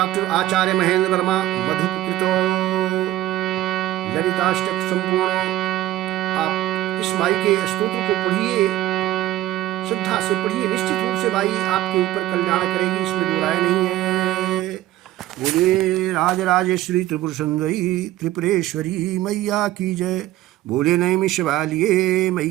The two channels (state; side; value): quieter; left; 14.9 dB